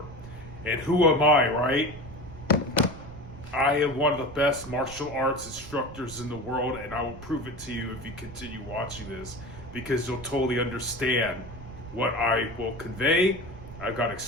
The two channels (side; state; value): right; noise; rumble, 15 dB below the sound